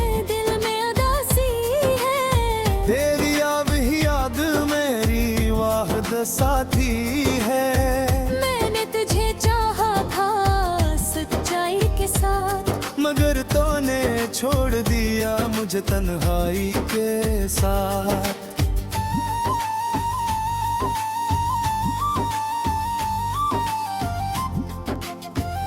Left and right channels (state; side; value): identical; both; correlation 1.00